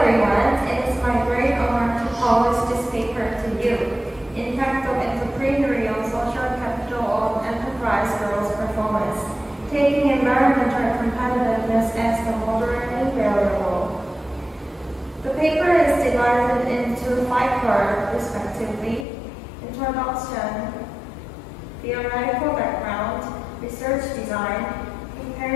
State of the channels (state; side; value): drops out; right; at 19.1 s